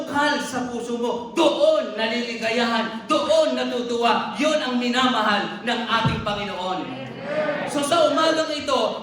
sa puso mo, doon naliligayahan, doon natutuwa. Yun ang minamahal ng ating Panginoon. So sa umagang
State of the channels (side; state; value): both; identical; correlation 1.00